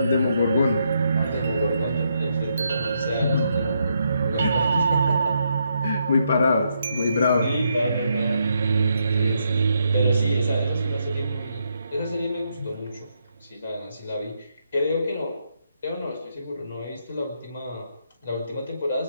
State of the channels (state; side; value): inverted; both; correlation -0.78